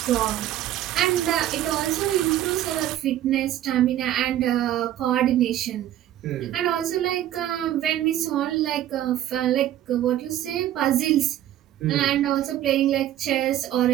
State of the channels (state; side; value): quieter; left; 12.4 dB